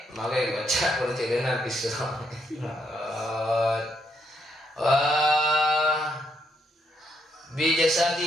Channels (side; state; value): both; normal; correlation 0.76